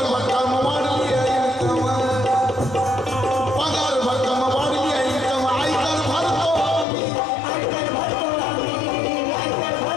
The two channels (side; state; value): right; drops out; at 6.9 s